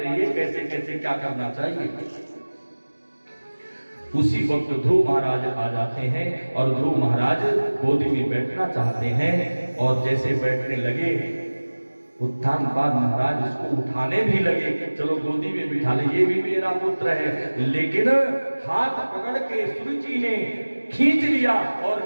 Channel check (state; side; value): inverted; both; correlation -1.00